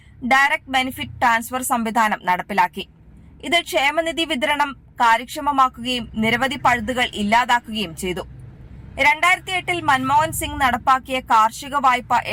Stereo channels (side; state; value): both; identical; correlation 1.00